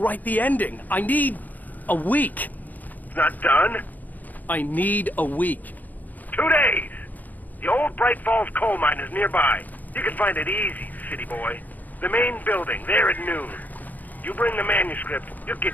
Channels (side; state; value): right; late; 0.082 ms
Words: the ending. I need a week. It's not done? I need a week. 2 days. The old Bright Falls coal mine is nearby. You can find it easy, city boy. The main building, there at noon. You bring the manuscript, you'll get